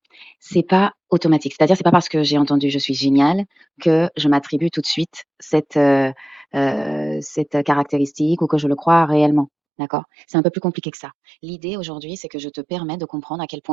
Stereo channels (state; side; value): drops out; left; at 9.5 s